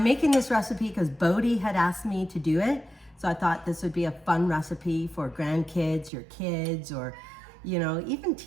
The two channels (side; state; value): left; drops out; at 6.1 s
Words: making this recipe because Bodie had asked me to do it. So I thought this would be a fun recipe for grandkids, your kids, or, you know, even